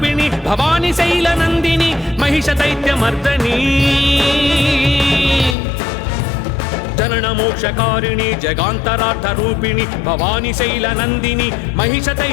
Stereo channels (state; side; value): drops out; right; at 5.6 s